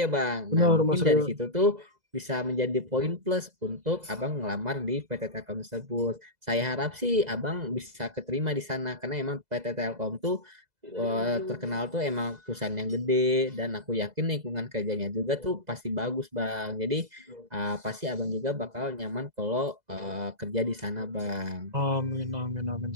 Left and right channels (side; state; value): left; late; 2.0 ms